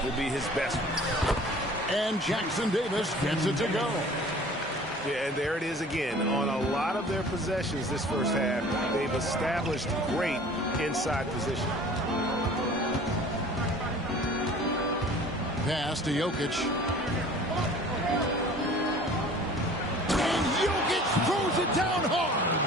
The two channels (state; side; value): normal; both; correlation 0.47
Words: will be his best one. And Jackson Davis gets it to go. Yeah, and there it is again. On a lot of their possessions this first half, they've established great inside position. Pass to Jokic. And Jokic throws it down